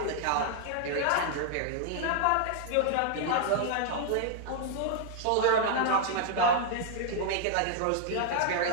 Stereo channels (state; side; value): different; both; correlation 0.00